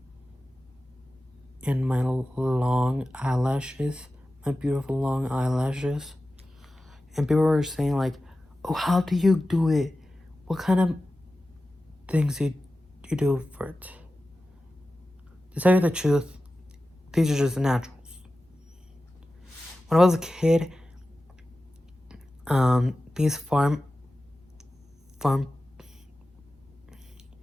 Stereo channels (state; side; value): normal; both; correlation 0.94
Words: and my long eyelashes, my beautiful long eyelashes. And people were saying like, oh, how do you do it? What kind of things you do for it? To tell you the truth, these are just naturals. When I was a kid, these farm